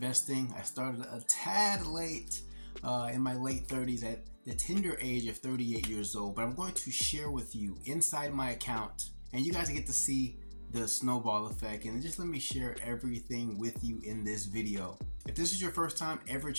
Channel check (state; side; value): inverted; both; correlation -1.00